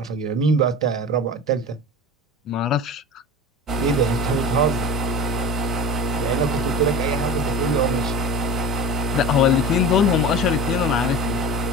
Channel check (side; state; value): both; normal; correlation 0.32